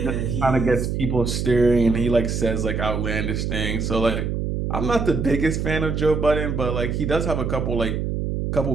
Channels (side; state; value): right; noise; hum, 1 dB below the sound